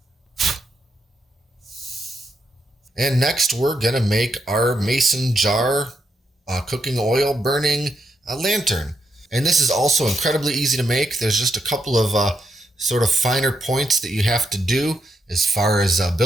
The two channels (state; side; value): normal; both; correlation 0.81